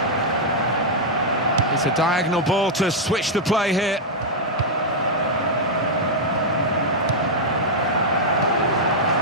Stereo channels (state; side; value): normal; both; correlation -0.04